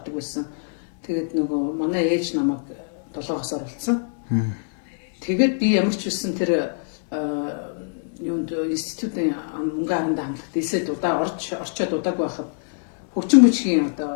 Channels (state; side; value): silent; right; 63 dB below the other